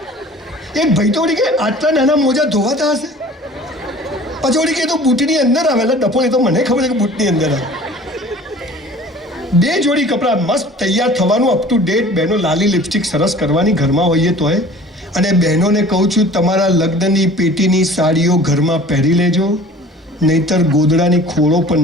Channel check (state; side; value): normal; both; correlation 0.46